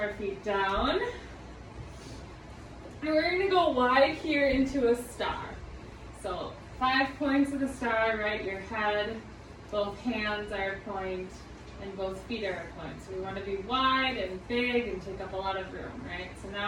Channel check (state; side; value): identical; both; correlation 1.00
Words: feet down. And we're going to go wide here into a star. So 5 points of the star, right? Your head, both hands are a point, and both feet are a point. So we want to be wide and big and take up a lot of room, right? So